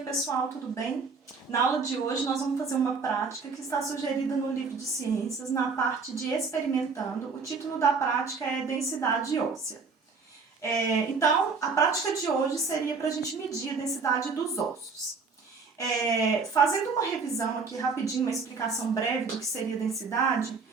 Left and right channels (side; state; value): left; quieter; 4.8 dB